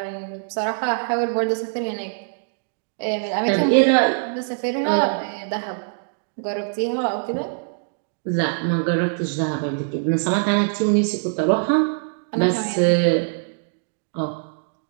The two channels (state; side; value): silent; left; digital silence